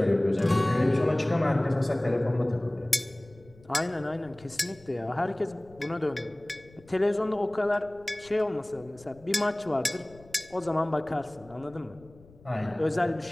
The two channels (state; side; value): noise; left; rumble, 25 dB below the sound